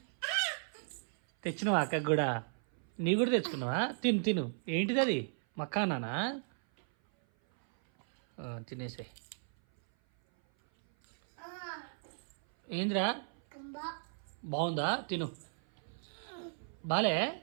తెచ్చినావా అక్కకు కూడా? నీ కూడా తెచ్చుకున్నావా? తిను తిను. ఏంటిది అది? మక్కానానా? తినేసే. ఏందిరా? బాగుందా? తిను. బాలే?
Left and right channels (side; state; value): left; silent; 54 dB below the other